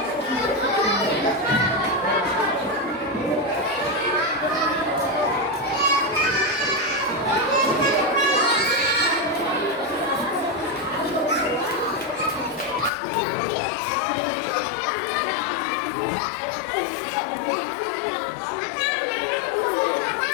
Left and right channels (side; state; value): right; drops out; at 12.9 s